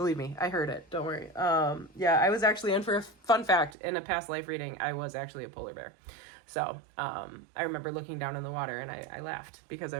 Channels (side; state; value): left; drops out; at 3.7 s